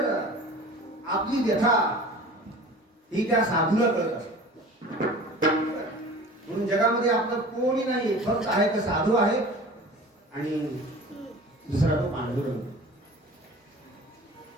आपली व्यथा ही त्या साधूला कळत असते. म्हणून जगामध्ये आपलं कोणी नाही, फक्त आहे तर साधू आहे आणि दुसरा तो पांडुरंग.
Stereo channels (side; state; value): both; normal; correlation 0.41